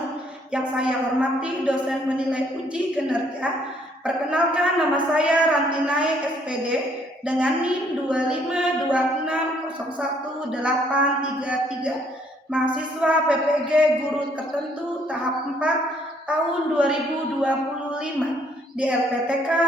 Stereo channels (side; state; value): both; normal; correlation 0.66